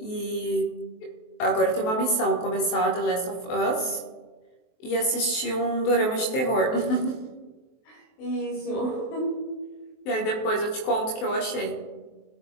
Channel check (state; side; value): late; right; 23 ms